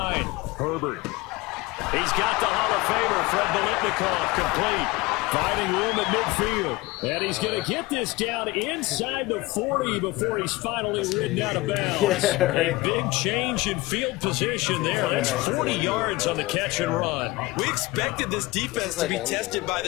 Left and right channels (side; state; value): right; quieter; 21.2 dB